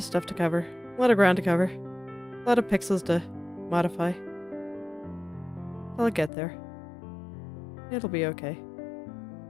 stuff to cover. A lot of ground to cover. A lot of pixels to modify. I'll get there. It'll be okay.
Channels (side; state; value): right; drops out; at 6.3 s